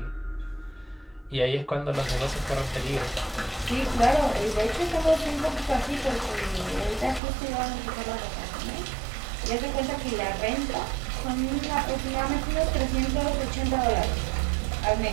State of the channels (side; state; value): left; drops out; at 7.2 s